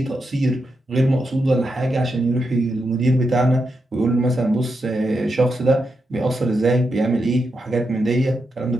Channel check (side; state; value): both; normal; correlation 0.85